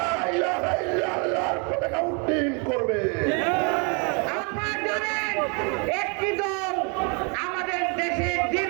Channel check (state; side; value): quieter; left; 35.0 dB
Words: ইলাহা ইল্লাল্লাহর পতাকা উড্ডীন করবে। আপনারা জানেন একটি দল আমাদের দেশে